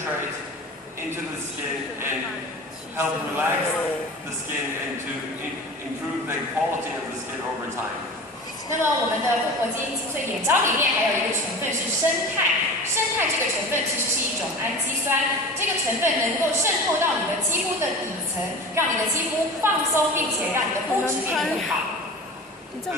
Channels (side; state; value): both; normal; correlation 0.35